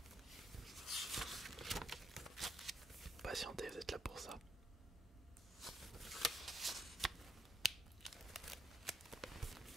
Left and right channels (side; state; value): both; normal; correlation 0.76